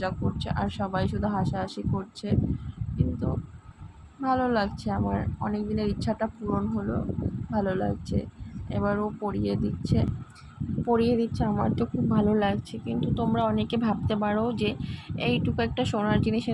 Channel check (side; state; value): both; identical; correlation 1.00